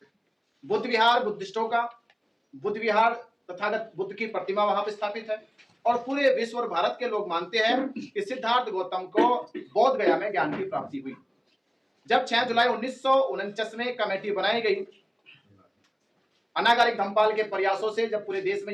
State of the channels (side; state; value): both; identical; correlation 1.00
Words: बुद्ध विहार बुद्धिस्टों का बुद्ध विहार तथागत बुद्ध की प्रतिमा वहां पर स्थापित है और पूरे विश्व और भारत के लोग मानते हैं कि सिद्धार्थ गौतम को बोध गया में ज्ञान की प्राप्ति हुई। जब 6 जुलाई 1949 में कमेटी बनाई गई, अनागारिक धम्मपाल के प्रयासों से जब पूरे देश में